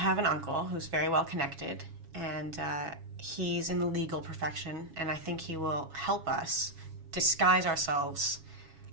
an uncle who's very well connected, and he's in the legal profession, and I think he will help us disguise ourselves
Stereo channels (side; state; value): left; late; 7.2 ms